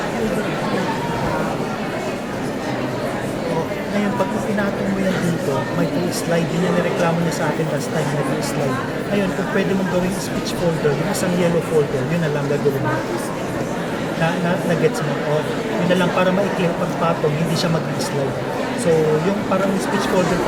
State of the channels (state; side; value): identical; both; correlation 1.00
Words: ngayon pag pinatong mo yan dito may slide din yan, nireklamo niya sa akin last time na slide ngayon kung pwede mong gawing speech folder yung isang yellow folder yun na lang gagawin mo na gets mo yun na lang para maikli ang pagpatong hindi siya mag-slide so yung parang speech folder